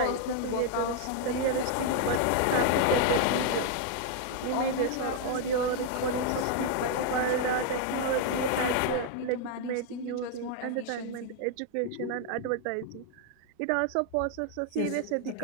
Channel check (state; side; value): different; both; correlation 0.00